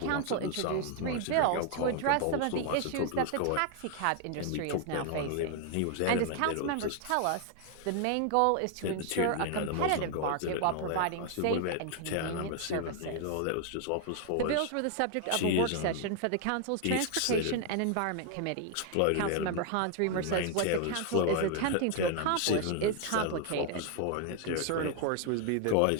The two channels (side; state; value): both; different; correlation 0.00